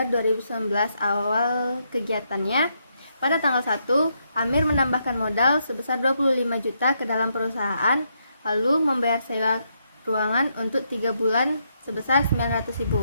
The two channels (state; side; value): inverted; both; correlation -0.78